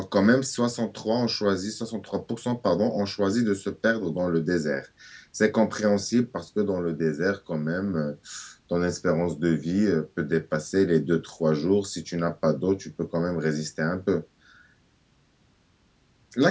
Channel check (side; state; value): both; identical; correlation 1.00